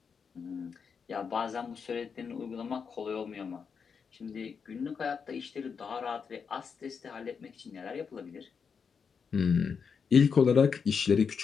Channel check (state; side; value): quieter; right; 6.1 dB